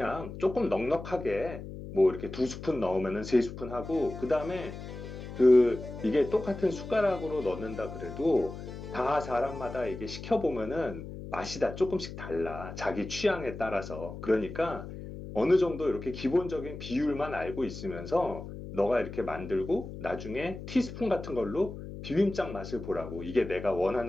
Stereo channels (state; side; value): noise; left; hum, 10 dB below the sound